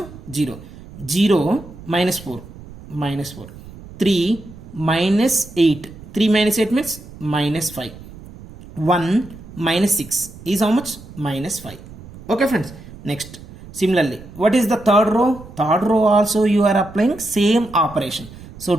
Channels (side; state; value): right; noise; rumble, 17 dB below the sound